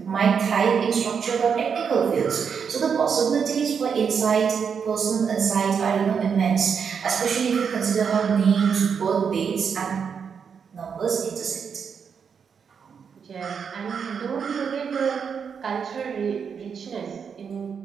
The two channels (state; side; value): quieter; left; 6.6 dB